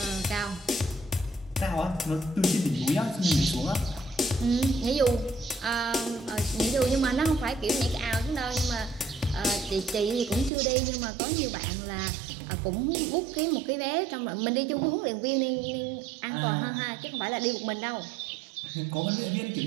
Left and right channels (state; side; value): drops out; left; at 10.5 s